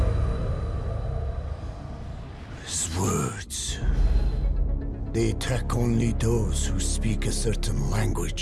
is words. They attack only those who speak a certain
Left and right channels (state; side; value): identical; both; correlation 1.00